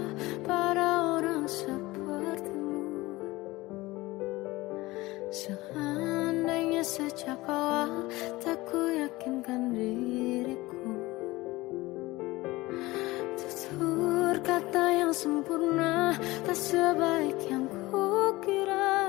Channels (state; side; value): quieter; right; 20.0 dB